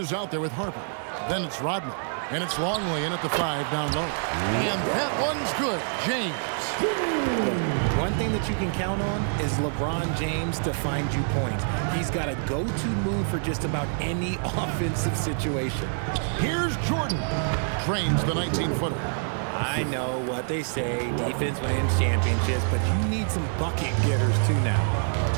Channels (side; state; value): left; silent; digital silence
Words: out there with Harper. Then it's Rodman. And it's Longley in at the 5 down low. And that one's good. James. Look, one thing that you can count on is LeBron James to find you points. He's got a go-to move for just about any offensive situation. Here's Jordan. Trains the 19-footer. I know what they say, defense wins championships, but you need some bucket getters too now.